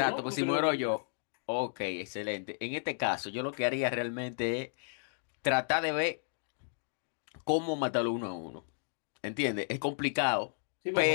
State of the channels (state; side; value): silent; right; digital silence